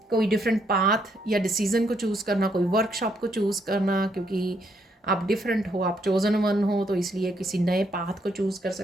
डिफरेंट पाथ या डिसीज़न को चूज़ करना, कोई वर्कशॉप को चूज़ करना, क्योंकि आप डिफरेंट हो, आप चोजन वन हो, तो इसलिए किसी नए पाथ को चूज़ कर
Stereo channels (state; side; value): normal; both; correlation 0.74